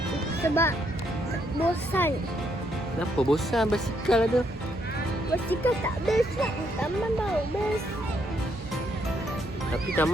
Sebab bosan. Kenapa bosan basikal ada? Basikal tak best kan? Taman baru best. Tapi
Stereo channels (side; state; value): both; normal; correlation 0.74